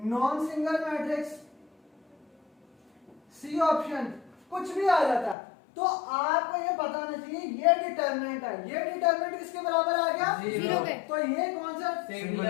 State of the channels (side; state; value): right; drops out; at 5.4 s